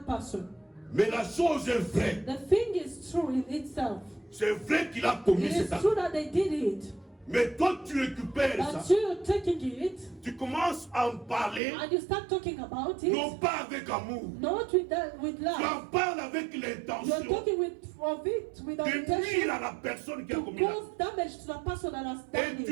person. Mais la chose est vraie. The thing is true in itself. C'est vrai qu'il a commis It cet is acte. true that they did it, Mais toi, tu récupères but ça. you're taking it Tu commences à en parler, and you start talking about non it, pas avec amour. not with Tu love. en parles avec You're l'intention talking of it with the de nuire intention à la personne qui a to commis l'acte. cause damage to the person that has done Et tu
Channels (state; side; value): drops out; left; at 11.6 s